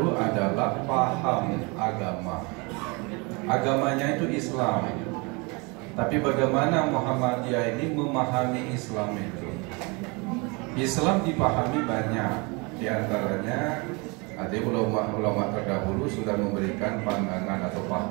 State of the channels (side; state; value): left; quieter; 28.9 dB